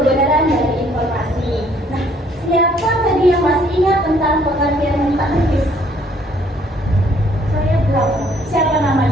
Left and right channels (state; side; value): normal; both; correlation 0.63